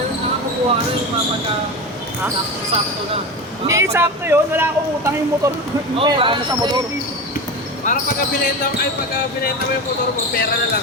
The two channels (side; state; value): both; normal; correlation 0.24